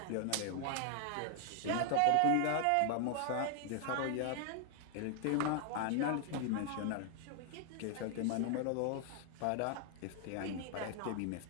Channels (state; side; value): different; both; correlation 0.00